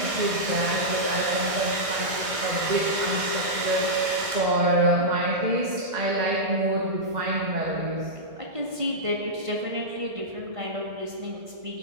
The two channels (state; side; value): late; left; 1.6 ms